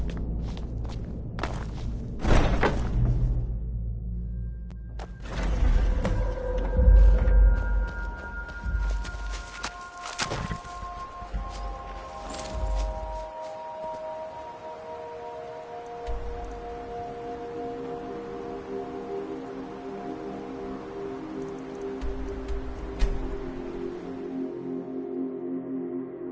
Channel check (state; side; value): identical; both; correlation 1.00